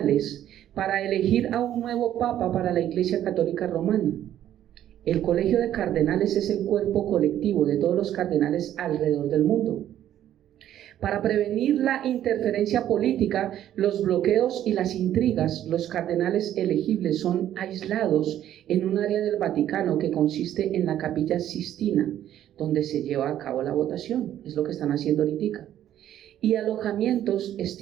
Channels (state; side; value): quieter; left; 11.5 dB